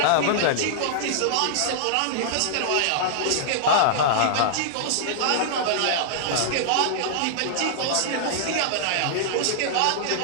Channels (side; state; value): both; different; correlation -0.01